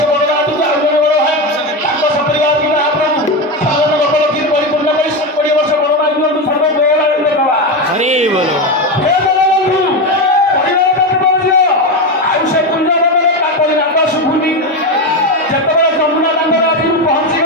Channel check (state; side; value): normal; both; correlation 0.14